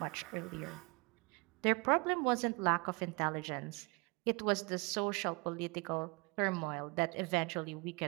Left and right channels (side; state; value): left; quieter; 29.3 dB